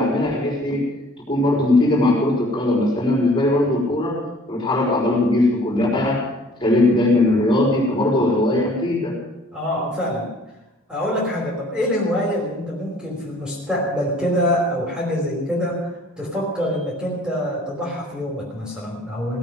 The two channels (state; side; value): normal; both; correlation 0.54